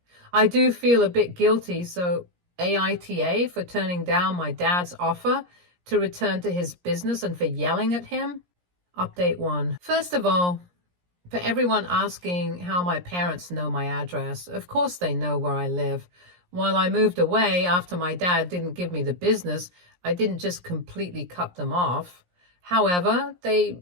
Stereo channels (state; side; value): late; left; 17 ms